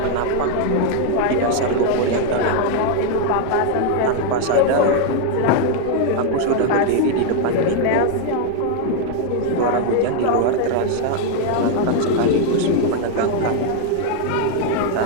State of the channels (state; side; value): different; both; correlation 0.00